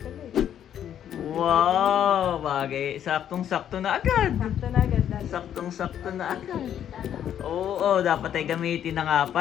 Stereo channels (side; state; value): right; quieter; 9.9 dB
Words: eh. Wow, bagay. Saktong-sakto na agad. Sakto na agad, daddy. Saktong-sakto na agad. Oo, dapat ay gamitin na nga